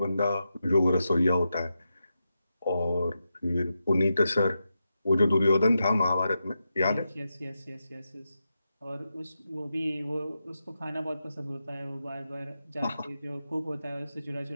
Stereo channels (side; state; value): both; inverted; correlation -0.88